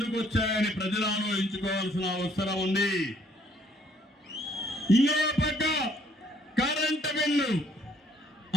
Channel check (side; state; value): both; normal; correlation 0.64